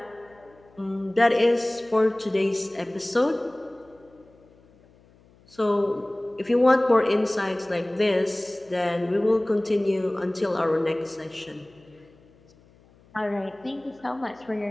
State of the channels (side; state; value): left; noise; hum, 29 dB below the sound